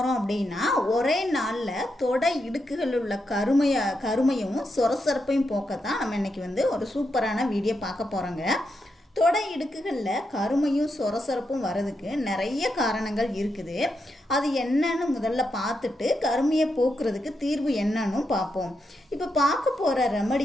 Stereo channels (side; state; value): both; normal; correlation 0.84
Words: அப்படின்னா, ஒரே நாளில் தொடை இடுக்குகள் உள்ள கருமையும் சொரசொரப்பையும் போக்கத்தான் நம்ம இன்னைக்கு ஒரு சூப்பரான வீடியோ பார்க்க போகிறோங்க. தொடை இடுக்குகளில் கருமையும் சொரசொரப்பும் வர்றதுக்கு நிறைய காரணங்கள் இருக்குது. அது என்னன்னு முதல்ல பார்த்துட்டு கருமையை போக்குறதுக்கு தீர்வு என்னன்னு பார்ப்போம். இப்போ பார்க்க போகிற